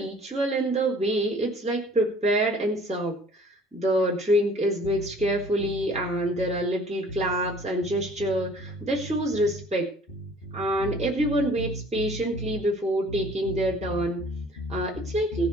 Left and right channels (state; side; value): normal; both; correlation 0.52